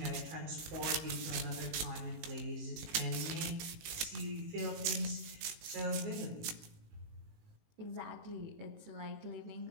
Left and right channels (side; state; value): left; late; 19 ms